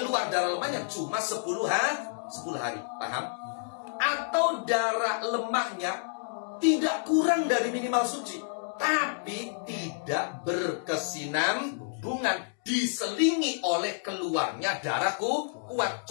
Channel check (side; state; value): right; silent; digital silence